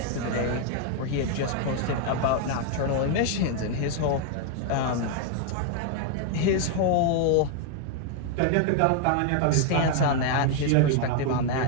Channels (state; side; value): different; both; correlation 0.00